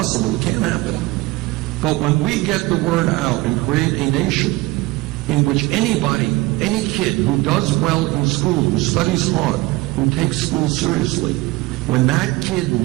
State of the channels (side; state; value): left; quieter; 20.5 dB